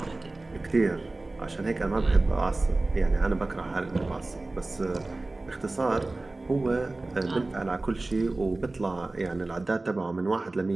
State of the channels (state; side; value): quieter; left; 3.1 dB